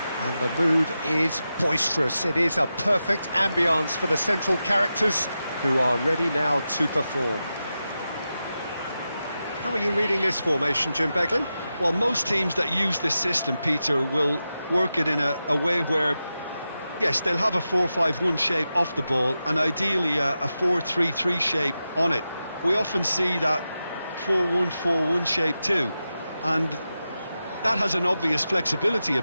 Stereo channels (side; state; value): both; inverted; correlation -0.91